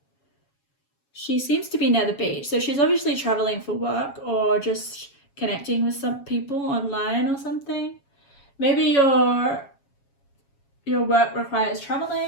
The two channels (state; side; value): late; right; 7.3 ms